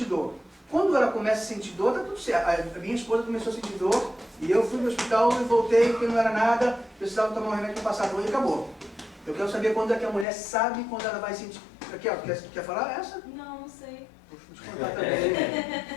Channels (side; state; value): right; drops out; at 10.2 s